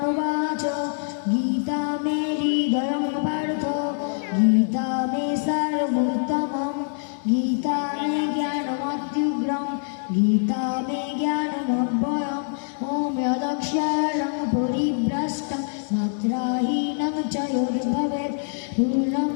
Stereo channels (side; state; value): right; silent; digital silence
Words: বাচ গীতা মে হৃদয়ং পার্থ গীতা মে সারভূতমম গীতা মে জ্ঞানমত্যুগ্রম গীতা মে জ্ঞানমব্যয়ম ওম যদক্ষরং পরিভ্রষ্টং মাত্রাহীনং চ যদ্ভবেৎ পূর্ণং